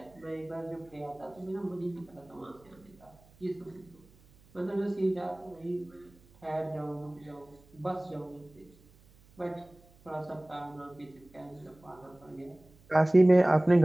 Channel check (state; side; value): noise; right; hum, 27 dB below the sound